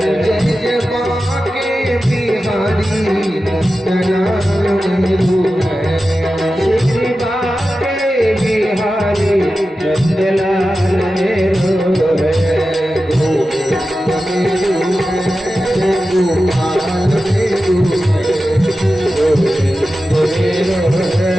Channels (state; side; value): normal; both; correlation 0.93